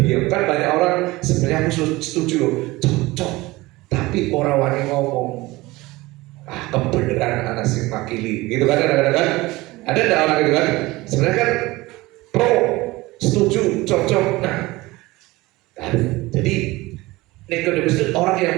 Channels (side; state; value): left; quieter; 20.5 dB